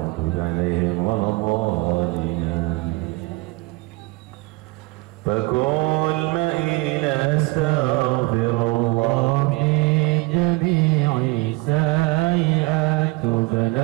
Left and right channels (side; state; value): left; quieter; 23.4 dB